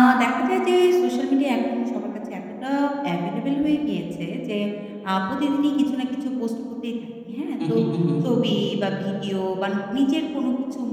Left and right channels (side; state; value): both; identical; correlation 1.00